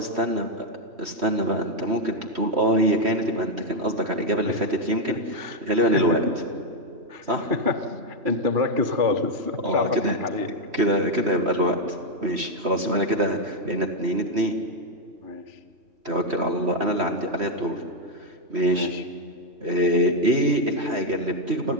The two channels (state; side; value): late; left; 3.1 ms